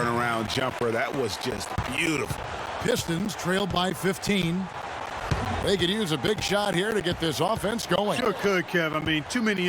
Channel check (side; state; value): both; identical; correlation 1.00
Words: jumper. That was just beautiful. Pistons trailed by 15. They could use a big shot here to get this offense going. Sure could, Kev. I mean, too many